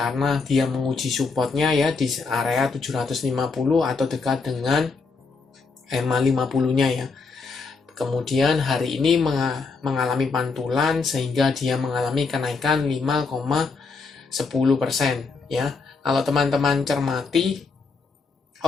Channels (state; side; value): quieter; right; 4.5 dB